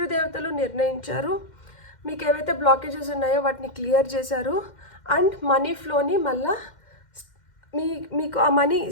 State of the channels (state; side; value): late; right; 2.1 ms